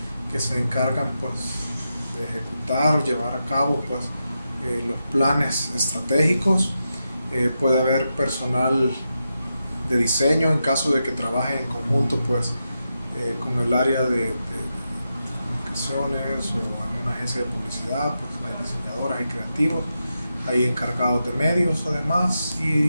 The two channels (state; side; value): inverted; both; correlation -0.88